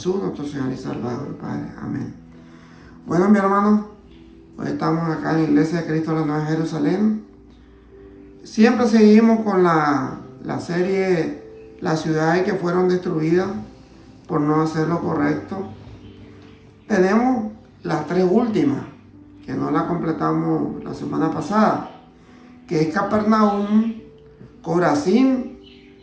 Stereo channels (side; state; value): both; identical; correlation 1.00